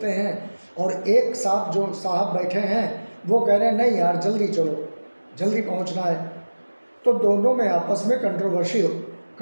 हैं, और एक साथ जो साहब बैठे हैं वो कह रहे हैं नहीं यार जल्दी चलो, जल्दी पहुंचना है। तो दोनों में आपस में कंट्रोवर्सी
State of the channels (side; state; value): both; inverted; correlation -1.00